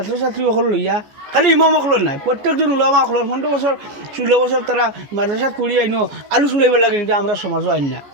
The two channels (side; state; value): left; late; 14 ms